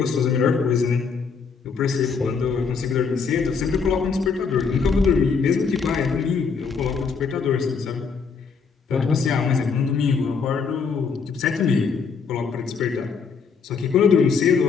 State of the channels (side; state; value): right; quieter; 5.5 dB